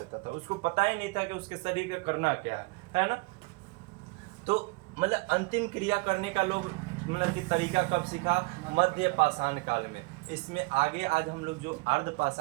था, उसको पता ही नहीं था कि उसके शरीर का करना क्या है ना। तो मतलब अंतिम क्रिया करने का लोग मतलब कि तरीका कब सीखा, मध्य पाषाण काल में। इसमें आगे आज हम लोग जो अर्ध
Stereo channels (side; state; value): left; quieter; 26.3 dB